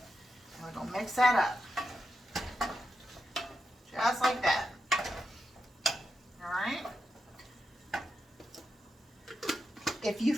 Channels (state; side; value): normal; both; correlation 0.87